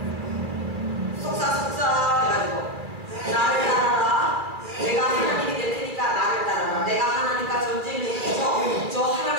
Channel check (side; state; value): left; late; 2.4 ms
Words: 속삭속삭 해가지고 나를 따라라. 내가 하나님이 될 테니까 나를 따라라. 내가 하나님과 전쟁을 해서 저